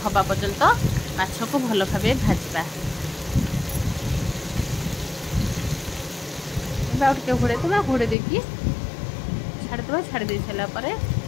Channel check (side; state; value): right; drops out; at 8.2 s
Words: हवा पर्यंत माछ को भल भाव भाजवा। टे घोड़े देवा घोड़े देकी छाड़ीदे छाड़ी सारापर ए